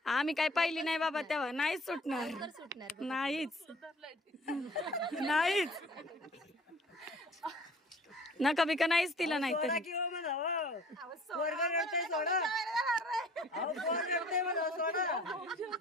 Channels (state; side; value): normal; both; correlation 0.51